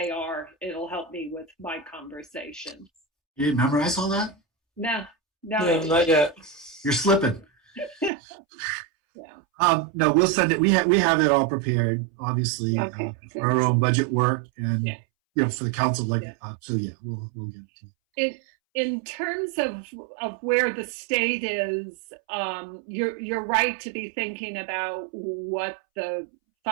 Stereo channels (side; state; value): left; drops out; at 8.1 s